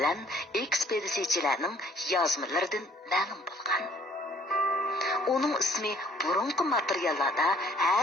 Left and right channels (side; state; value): both; normal; correlation 0.59